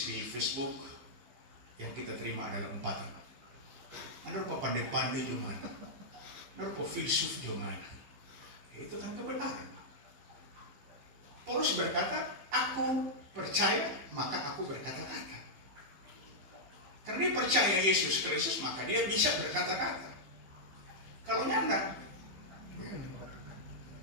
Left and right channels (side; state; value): left; late; 15 ms